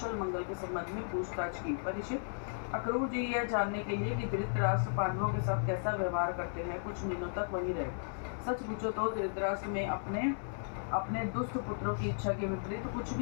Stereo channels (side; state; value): right; silent; 54 dB below the other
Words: मंगल के संबंध में पूछताछ की। परीक्षित अक्रूर जी यह जानने के लिए कि धृतराष्ट्र पांडवों के साथ कैसा व्यवहार करते हैं कुछ दिनों तक वहीं रहे। सच पूछो तो धृतराष्ट्र में अपने दुष्ट पुत्रों की इच्छा के विपरीत कुछ